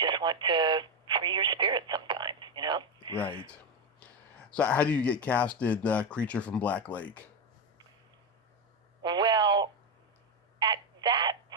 want to free your spirit sometimes, Right. So how do you get cast in Creature from Black Lake? Well, at that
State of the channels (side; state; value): both; normal; correlation 0.10